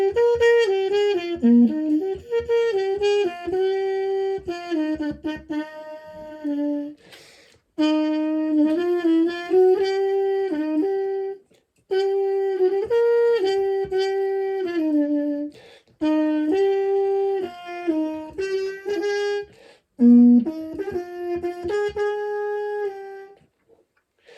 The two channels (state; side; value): identical; both; correlation 1.00